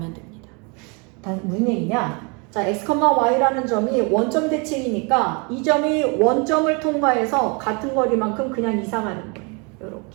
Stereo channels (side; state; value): left; quieter; 32.1 dB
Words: 됩니다. 무슨 얘기냐? 자, x, y라는 점이 원점 대칭이니까 이 점이 원점을 통과해서 같은 거리만큼 그냥 이상하는 거예요.